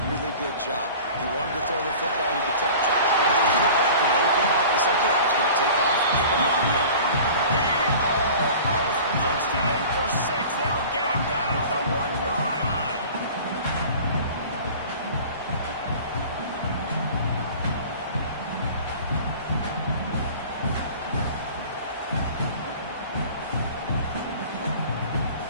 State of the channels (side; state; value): both; inverted; correlation -0.42